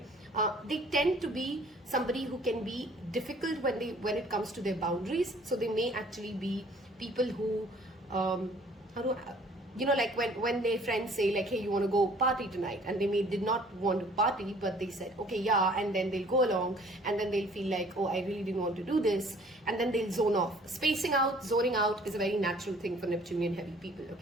They tend to be somebody who can be difficult when it comes to their boundaries. So they may actually be people who, like when their friends say like, hey, you want to go party tonight, and they did not want to party, but they said, okay, yeah, and then they'll go along, and then they'll feel like, oh, I really didn't want to do this, and then they'll zone off. Spacing out, zoning out is a very natural thing for Neptunian heavy people,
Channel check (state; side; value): normal; both; correlation 0.55